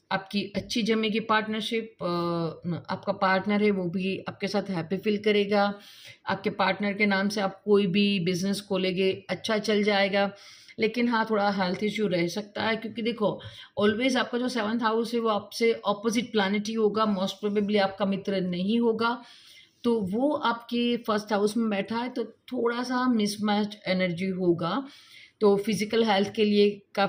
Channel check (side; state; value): both; identical; correlation 1.00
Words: आपकी अच्छी जमेगी पार्टनरशिप, आपका पार्टनर है वो भी आपके साथ हैप्पी फील करेगा, आपके पार्टनर के नाम से आप कोई भी बिजनेस खोलेंगे अच्छा चल जाएगा। लेकिन हाँ थोड़ा हेल्थ इश्यू रह सकता है, क्योंकि देखो ऑलवेज आपका जो सेवंथ हाउस है वो आपसे ऑपोजिट प्लानिट ही होगा, मोस्ट प्रोबेबली आपका मित्र नहीं होगा, तो वो आपके फर्स्ट हाउस में बैठा है तो थोड़ा सा मिसमैच एनर्जी होगा, तो फिजिकल हेल्थ के लिए